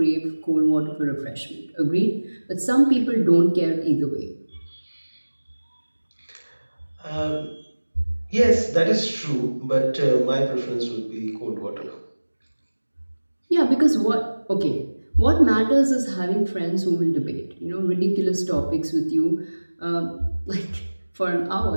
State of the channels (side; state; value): both; inverted; correlation -1.00